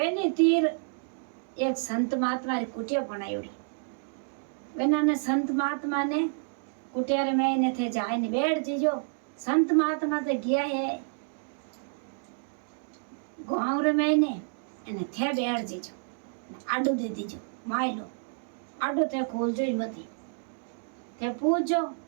तीर एक संत महात्मा री कुटिया बनायोड़ी वेना संत महात्मा ने कुटिया रे में ने थे जाए ने बैठ जीजो संत महात्मा तो गया है गाँव रे में ने એને થે બેઠ જીજો આડું દે દીજો માયલો આડું તે ખોલજો જ મતી તે પૂછજો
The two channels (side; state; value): left; silent; digital silence